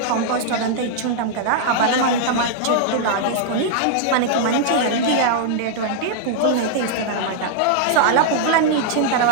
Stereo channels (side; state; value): both; different; correlation -0.01